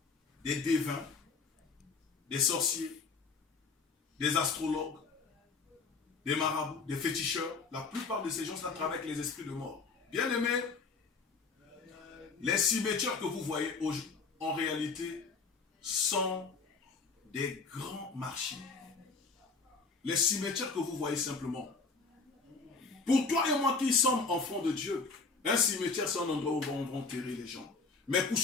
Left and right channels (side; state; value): right; quieter; 4.5 dB